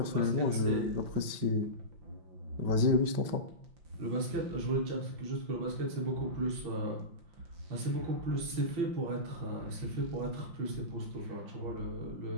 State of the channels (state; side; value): late; left; 5.7 ms